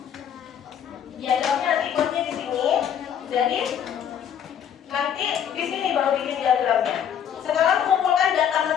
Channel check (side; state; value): right; quieter; 8.9 dB